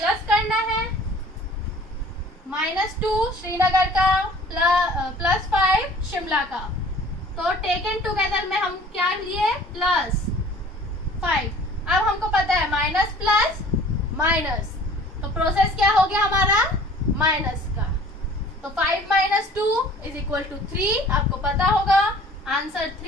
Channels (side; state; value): both; normal; correlation 0.49